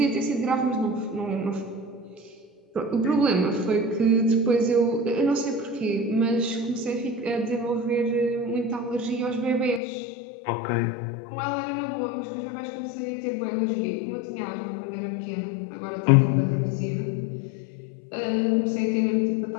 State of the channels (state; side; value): drops out; right; at 9.8 s